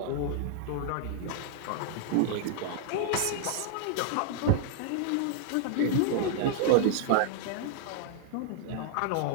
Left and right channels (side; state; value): both; different; correlation -0.01